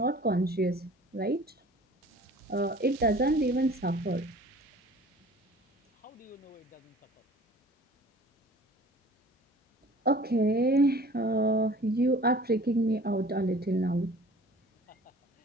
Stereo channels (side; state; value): both; normal; correlation 0.47